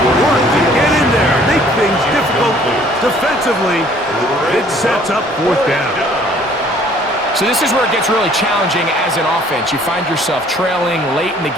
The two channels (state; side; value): normal; both; correlation 0.57